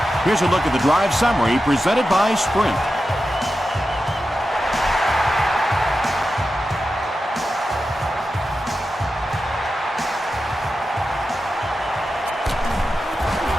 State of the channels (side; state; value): both; normal; correlation 0.91